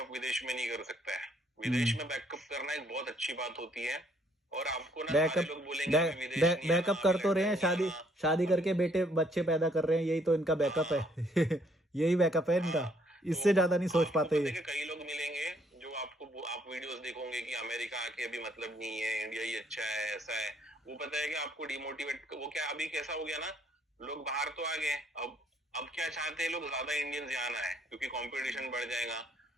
विदेश में नहीं कर सकता है। विदेश में बैकअप करना एक बहुत अच्छी बात होती है। और आपको ना सारे बैकअप लोग बोलेंगे अभी विदेश नहीं आना, बैकअप अभी कर तो रहे हैं, लंदन नहीं शादी आना। शादी करके बेटे बच्चे पैदा कर रहे हैं, यही तो इनका बैकअप हाँ है। यही बैकअप है इनका, हाँ। तो इससे ज्यादा नहीं सोच आपको पाते पता है ये। कि कई लोग मिलेंगे जो आपको, आप वीडियोस देखोगे कि अमेरिका आके अभी मतलब नहीं है, इंडिया ही अच्छा है, ऐसा है। वो पता है कि आपको डिमोटिवेट, वो क्या अभी कैसा हो गया ना, लोग बाहर तो आ गए, अब क्या चाहते हैं लोग, ज्यादा इंडियंस यहाँ आना है क्योंकि कंपटीशन बढ़ जाएगा।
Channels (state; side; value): normal; both; correlation 0.67